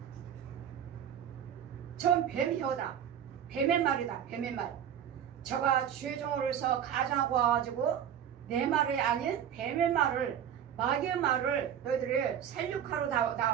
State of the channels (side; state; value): left; quieter; 9.3 dB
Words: 전 뱀혀다. 뱀의 말이다. 뱀의 말. 저가 주의 종으로서 가정하고 와가지고 내 말이 아닌 뱀의 말을, 마귀의 말을 너희들이 살육하러